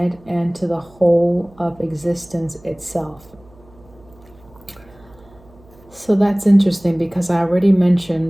and to the whole of existence itself. So that's interesting because I already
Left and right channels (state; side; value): noise; right; hum, 26 dB below the sound